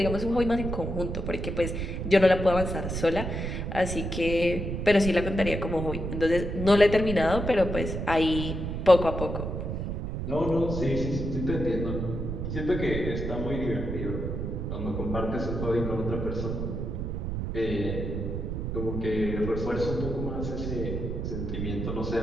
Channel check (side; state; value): right; noise; rumble, 3 dB below the sound